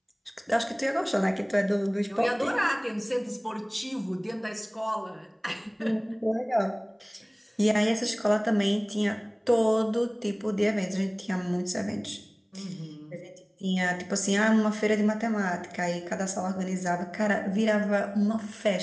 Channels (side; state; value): both; identical; correlation 1.00